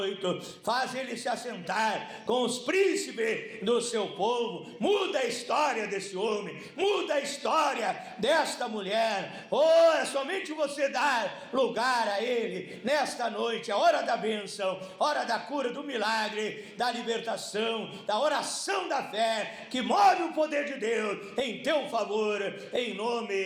faz ele se assentar com os príncipes do seu povo. Muda a história desse homem, muda a história desta mulher. Oh, é somente você dar lugar a ele nesta noite, a hora da bênção, hora da cura, do milagre, da libertação, da oração da fé, que move o poder de Deus em teu favor, em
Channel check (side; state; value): both; identical; correlation 1.00